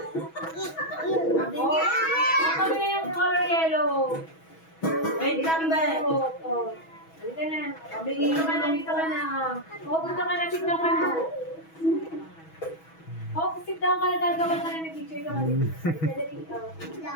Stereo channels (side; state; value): right; late; 6.2 ms